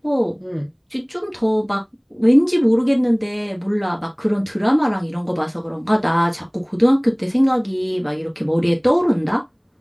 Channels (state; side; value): identical; both; correlation 1.00